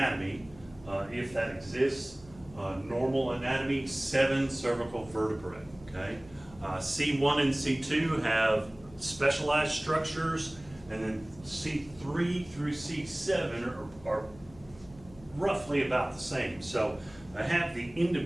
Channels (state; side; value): noise; left; hum, 22 dB below the sound